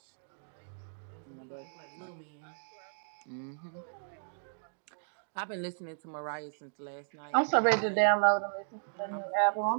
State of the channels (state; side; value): silent; left; digital silence